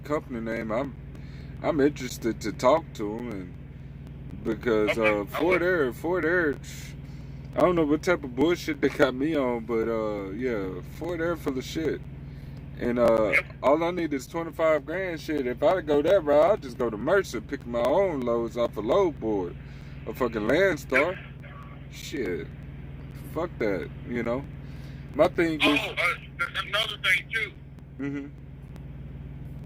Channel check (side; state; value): both; identical; correlation 1.00